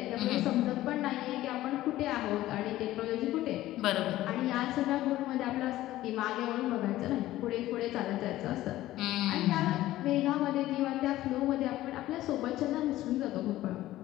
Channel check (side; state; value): right; quieter; 15.3 dB